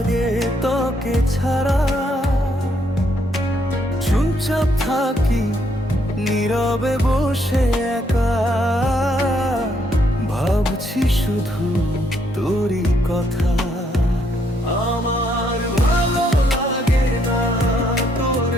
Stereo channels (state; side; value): normal; both; correlation 0.72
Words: তোকে ছাড়া, চুপচাপ থাকি নীরবে বসে একা, ভাবছি শুধু তোরই কথা। আমার ভালো লাগে না তোর